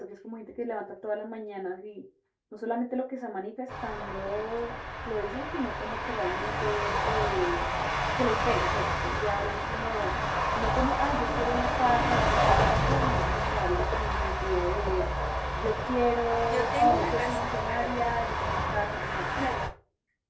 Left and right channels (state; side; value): identical; both; correlation 1.00